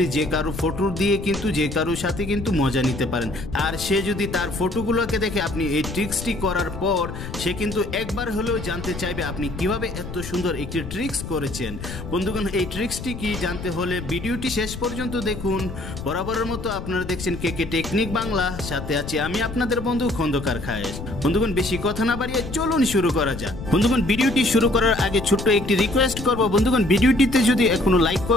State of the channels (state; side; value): noise; left; rumble, 9 dB below the sound